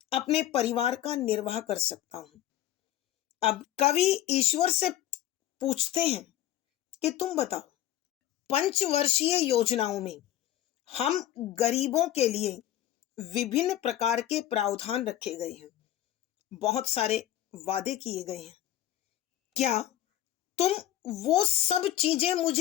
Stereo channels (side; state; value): right; quieter; 12.9 dB